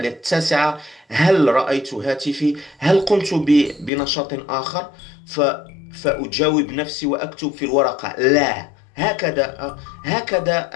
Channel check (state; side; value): drops out; right; at 3.9 s